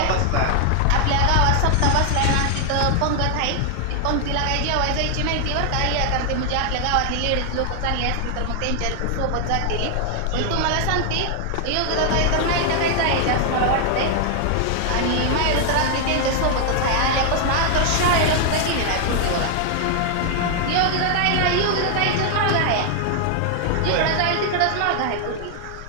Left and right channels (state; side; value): different; both; correlation 0.00